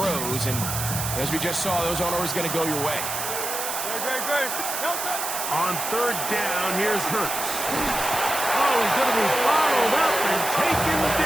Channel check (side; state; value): right; noise; hiss, 4 dB below the sound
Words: And as we just saw, those aren't always going to go your way. On third down, here's Hurts. Oh, he's going to be bottled up and taken